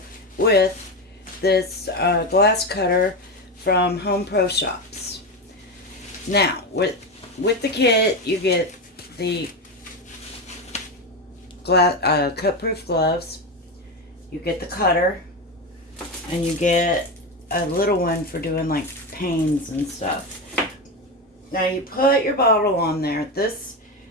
with this glass cutter from Home Pro Shops. Now, with the kit, you get the cut-proof gloves, you get the cutter, and you get a little one for doing like panes and stuff. Now you put your bottle on there.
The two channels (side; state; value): both; normal; correlation 0.16